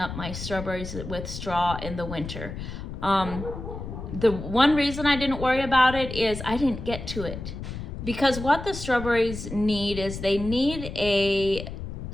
my strawberries with straw in the winter. The one reason I didn't worry about it is I didn't get to it. Because what the strawberries need is they need a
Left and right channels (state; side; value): noise; left; rumble, 8 dB below the sound